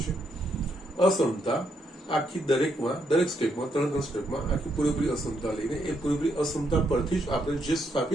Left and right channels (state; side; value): normal; both; correlation 0.77